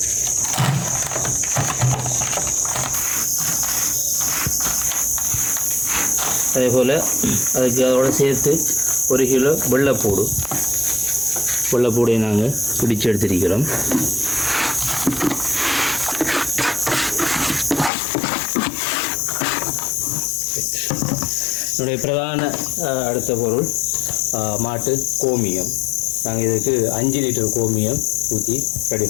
அதேபோல் அதோடு சேர்த்து 1 கிலோ வெள்ளைப்பூடை நாங்கள் பிடிச்சு எடுத்திருக்கிறோம். என்னுடைய பிரதான அடுத்த பொருள் மாட்டு கோமியம். நாங்கள் இதுக்கு 5 லிட்டர் கோமியம் ஊற்றி ரெடி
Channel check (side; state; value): right; drops out; at 17.9 s